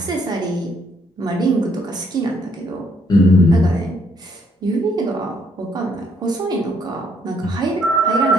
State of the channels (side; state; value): both; normal; correlation 0.69